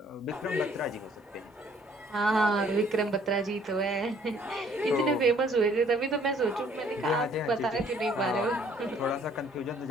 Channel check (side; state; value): both; normal; correlation 0.61